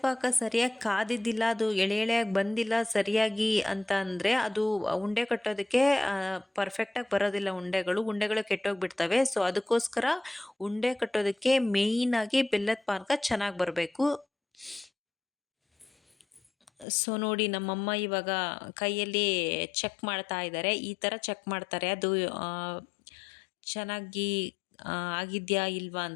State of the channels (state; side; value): drops out; right; at 16.9 s